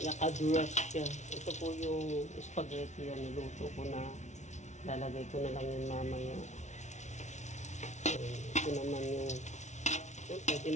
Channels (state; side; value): late; right; 0.33 ms